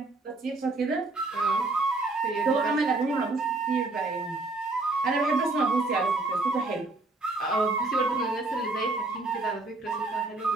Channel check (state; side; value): quieter; left; 3.3 dB